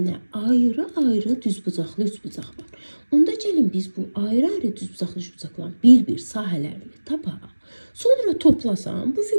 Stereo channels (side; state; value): both; inverted; correlation -1.00